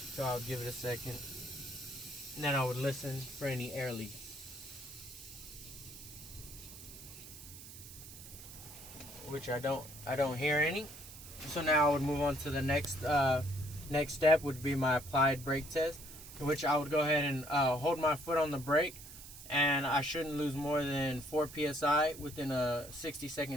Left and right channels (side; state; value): right; noise; hiss, 15 dB below the sound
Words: I'll give it a second. And then I would listen for any air leaks. Which I don't hear any. So now I would move on to the next step, would be my applied brake test, which I would go ahead and hold my foot on the brake, and I shouldn't lose more than 4 psi within a